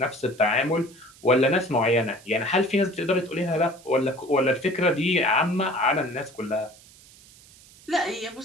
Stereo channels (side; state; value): right; noise; hiss, 24 dB below the sound